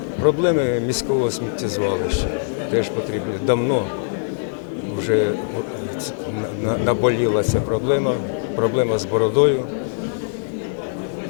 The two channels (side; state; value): right; silent; digital silence